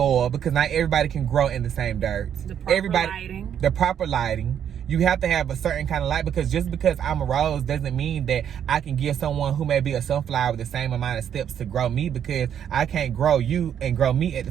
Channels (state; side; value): quieter; left; 9.1 dB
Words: because not everybody can grow in the same dirt. The proper lighting. The proper lighting. You have to have a certain kind of light, because just because I'm a rose doesn't mean that I can give someone who may be a sunflower the same amount of steps to grow me, because I can't grow you and grow me at